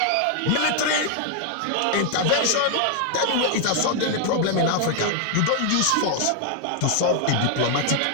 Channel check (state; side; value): different; both; correlation 0.00